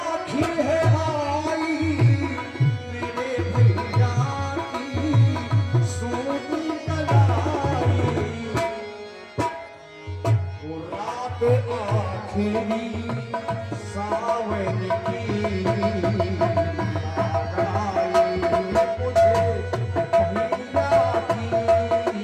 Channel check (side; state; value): both; identical; correlation 1.00